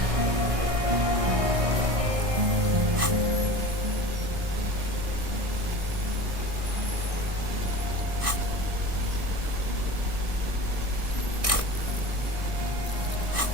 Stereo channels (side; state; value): left; late; 1.6 ms